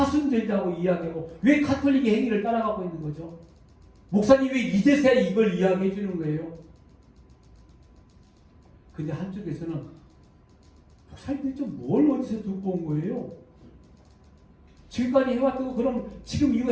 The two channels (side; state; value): both; identical; correlation 1.00